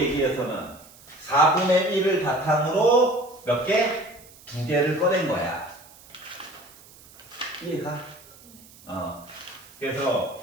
4분의 1을 바탕으로 몇 개? 2개를 꺼낸 거야. 이해가? 그래서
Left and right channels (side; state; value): right; noise; hiss, 23 dB below the sound